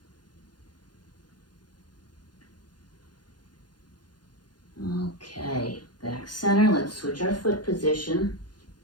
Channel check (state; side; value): late; right; 0.70 ms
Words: Okay, back center, let's switch our foot position.